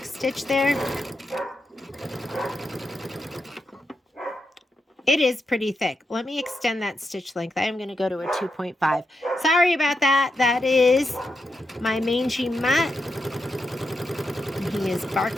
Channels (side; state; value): both; normal; correlation 0.85